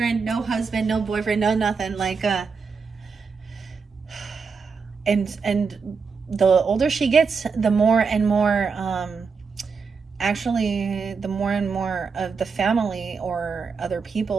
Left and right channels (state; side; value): quieter; left; 5.2 dB